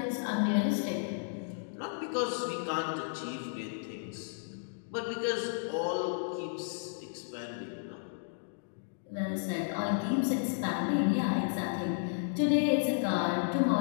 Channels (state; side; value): silent; right; digital silence